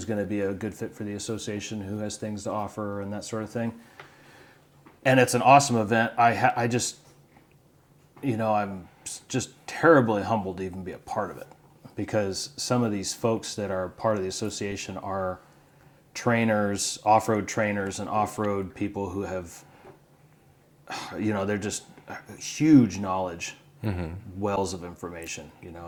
going to be a good fit for the association, who has things to offer, and that sort of thing. And it's an awesome event. I'm just terribly humbled to even be a part of it, because some of these folks that are part of the association are trainers, off-road trainers, and off-road people who have, they're just huge knowledge, wells of information. You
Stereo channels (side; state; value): both; identical; correlation 1.00